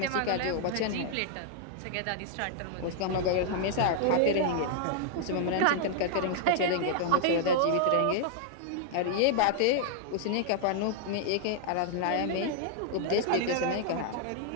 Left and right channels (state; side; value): different; both; correlation -0.01